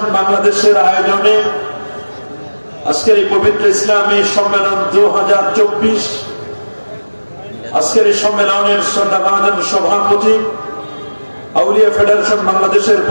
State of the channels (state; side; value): inverted; both; correlation -1.00